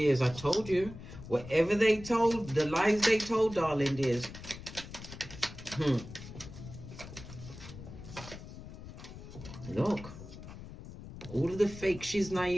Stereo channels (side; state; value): left; noise; rumble, 13 dB below the sound